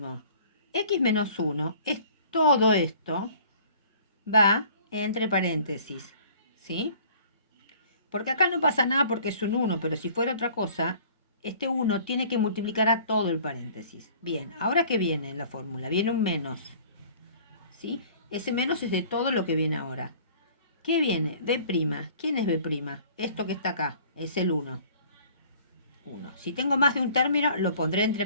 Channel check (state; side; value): inverted; both; correlation -0.51